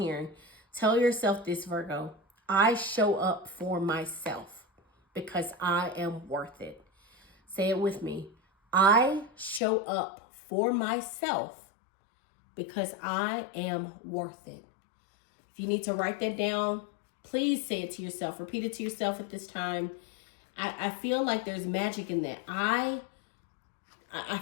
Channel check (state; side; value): drops out; right; at 9.6 s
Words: Tell yourself this, Virgo. I show up for myself because I am worth it. Say it with me. I show up for myself because I am worth it. If you need to write that down, please say it to yourself. Repeat it to yourself at this time. I feel like there's magic in that. I